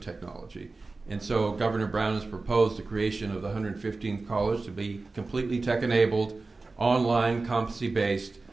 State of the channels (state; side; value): quieter; left; 3.6 dB